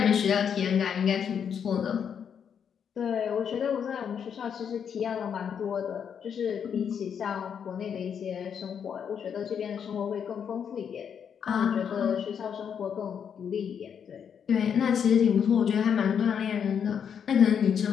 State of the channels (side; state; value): right; quieter; 7.7 dB